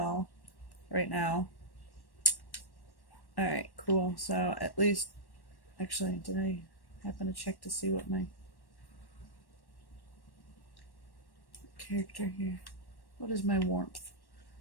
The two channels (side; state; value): right; late; 1.1 ms